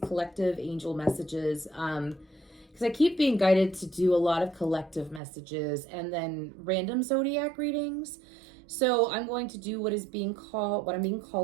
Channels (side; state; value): left; drops out; at 5.2 s